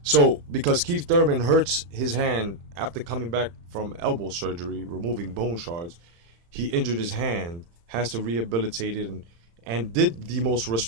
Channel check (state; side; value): late; left; 35 ms